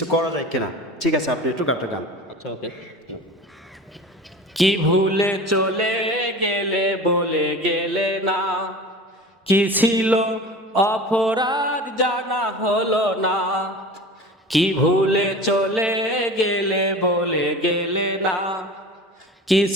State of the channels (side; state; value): both; normal; correlation 0.36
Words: করা যায় কিনা। ঠিক আছে, আপনি একটু গানটা গান। আচ্ছা, ওকে। কি ভুলে চলে গেলে বলে গেলে না, কি ছিল অপরাধ জানা হলো না। কি ভুলে চলে গেলে বলে গেলে না, কি